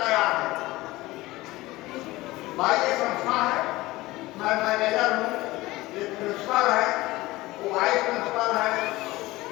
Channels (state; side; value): quieter; right; 19.1 dB